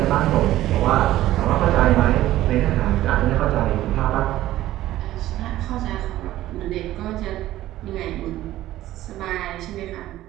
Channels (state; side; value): quieter; left; 14.7 dB